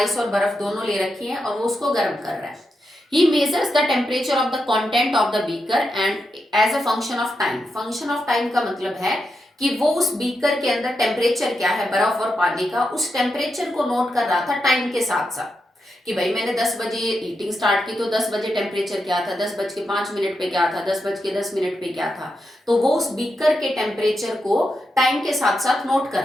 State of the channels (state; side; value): normal; both; correlation 0.86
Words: और बर्फ दोनों ले रखी है और वो उसको गर्म कर रहा है। He measures the temperature of the content of the beaker and as a function of time. Function of time का मतलब है कि वो उस बीकर के अंदर टेम्परेचर क्या है बर्फ और पानी का, उस टेम्परेचर को नोट कर रहा था टाइम के साथ साथ कि भाई मैंने 10 बजे हीटिंग स्टार्ट की तो 10 बजे टेम्परेचर क्या था, 10:05 पे क्या था, 10:10 पे क्या था। तो वो उस बीकर के टेम्परेचर को टाइम के साथ साथ नोट कर